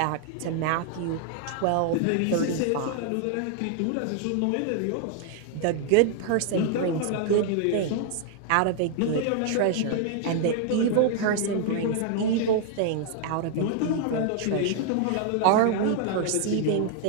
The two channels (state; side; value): different; both; correlation 0.00